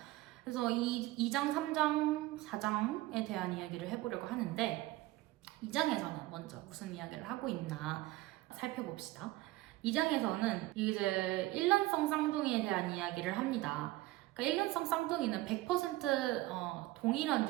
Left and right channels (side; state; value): left; quieter; 18.2 dB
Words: 그래서 이 2장, 3장, 4장에 대한 이야기를 해보려고 하는데 2장에서는 먼저 무슨 이야기를 하고 있나 살펴봅시다. 2장에서는 이제 일란성 쌍둥이에 대한 이야기를 합니다. 그러니까 일란성 쌍둥이는 100% 동일한